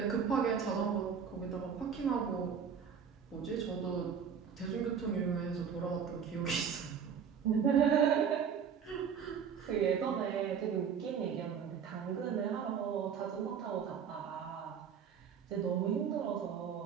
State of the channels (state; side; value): quieter; left; 7.2 dB